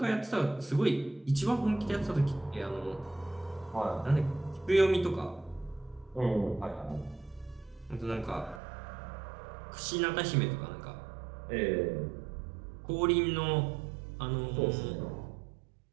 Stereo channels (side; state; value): left; drops out; at 8.6 s